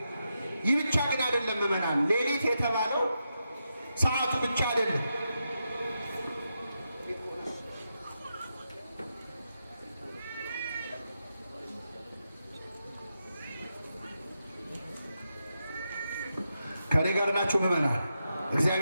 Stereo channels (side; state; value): both; inverted; correlation -0.86